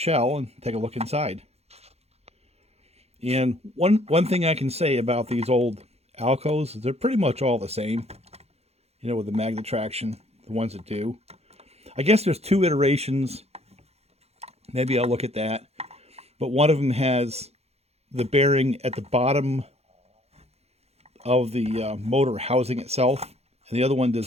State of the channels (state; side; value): late; left; 0.30 ms